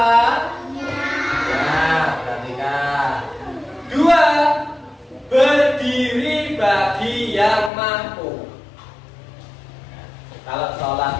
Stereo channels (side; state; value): right; drops out; at 7.7 s